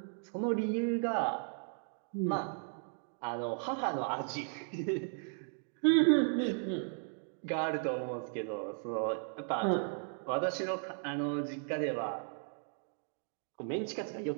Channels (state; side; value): silent; left; 54 dB below the other